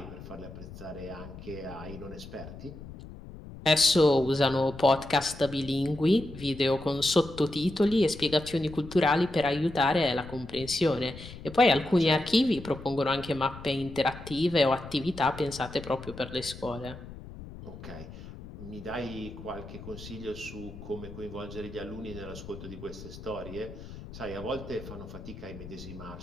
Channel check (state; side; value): noise; left; rumble, 14 dB below the sound